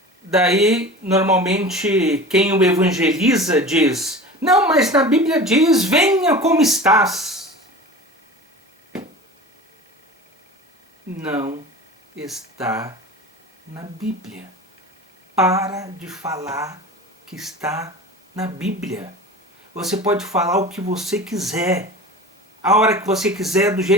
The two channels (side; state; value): both; normal; correlation 0.35